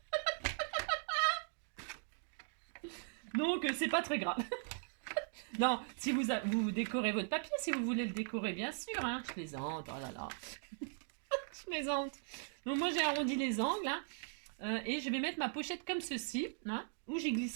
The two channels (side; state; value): left; silent; digital silence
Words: Donc, c'est pas très grave. Non, si vous décorez votre papier, si vous voulez le décorer, bien sûr, hein. Je plaisante, oh là là. Je plaisante. Donc, moi, j'ai arrondi les angles, hein. Et je vais mettre ma pochette comme ceci, hein, où j'y